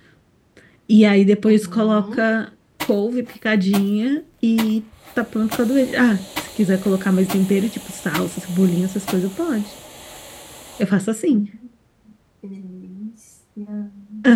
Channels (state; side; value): identical; both; correlation 1.00